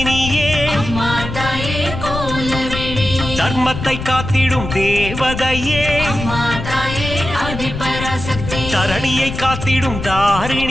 அம்மா தாயே கோலவேணி தர்மத்தை காத்திடும் தேவதையே அம்மா தாயே ஆதிபராசக்தி தரணியை காத்திடும்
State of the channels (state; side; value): noise; left; rumble, 7 dB below the sound